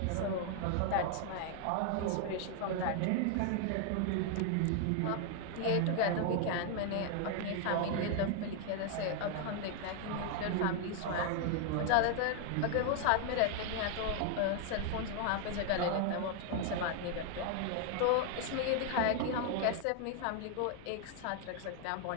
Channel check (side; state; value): both; different; correlation 0.00